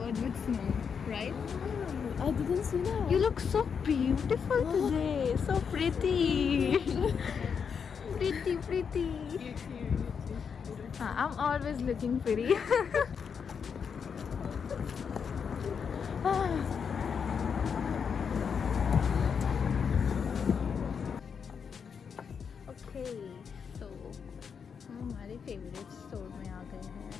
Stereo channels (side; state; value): right; quieter; 6.5 dB